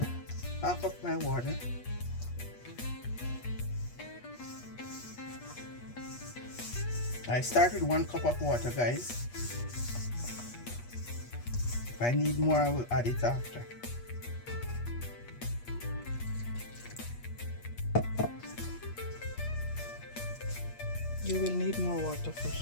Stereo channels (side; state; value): right; late; 8.4 ms